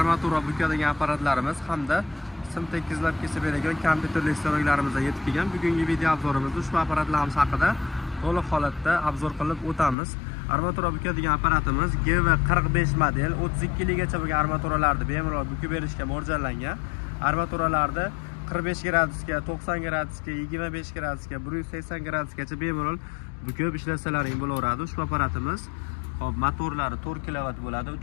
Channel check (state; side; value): drops out; right; at 10.0 s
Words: bukadigan apparatlarimiz hamda sim tekkizlab kesib beradigan kompyuterli stanoklarimiz yetib kelgan. Bugungi video obzorimizda ushbu apparatlarimiz haqida to'liq holatda obzor qilib o'tamiz. Armatura bukadigan apparatimiz GV45 model 32 ligacha bo'lgan armaturalarni bemalol bukib berishga mo'ljallangan. Armaturalarda 45 gradusga, 90 gradusga, 25 gradusga, 180 gradusgacha bemalol bukib ishlasalaring bo'laveradi. Ushbu apparatimiz motorlari 4 kW bo'ladi,